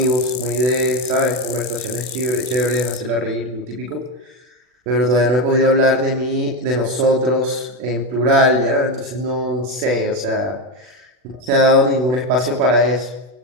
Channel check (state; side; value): late; left; 40 ms